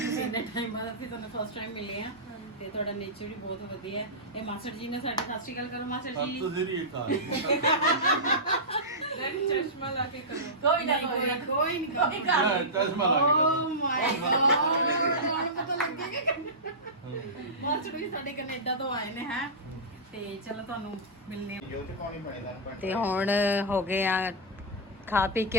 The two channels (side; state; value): both; normal; correlation -0.14